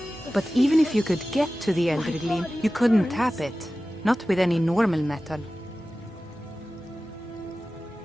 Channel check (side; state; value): both; normal; correlation 0.95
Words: But even if you could get to the Eldergleam, you couldn't tap it. Not with any normal metal.